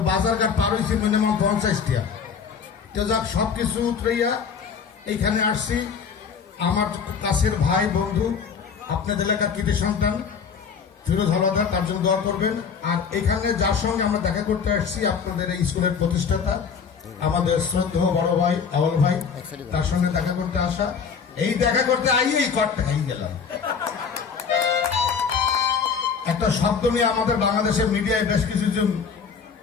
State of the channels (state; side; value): quieter; right; 6.2 dB